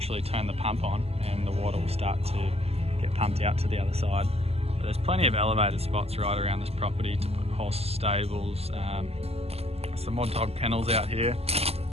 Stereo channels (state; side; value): late; left; 0.29 ms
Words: turn the pump on and the water will start to get pumped out to the other side. But there's plenty of elevated spots right around this property to put horse stables, some more dog kennels out here,